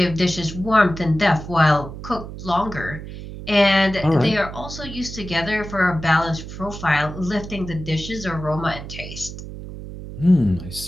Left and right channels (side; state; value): right; noise; hum, 11 dB below the sound